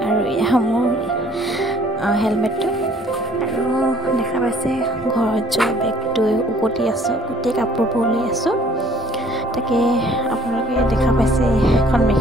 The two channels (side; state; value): both; normal; correlation 0.58